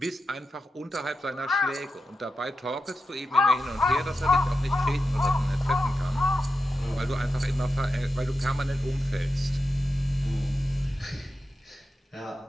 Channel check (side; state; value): both; normal; correlation 0.89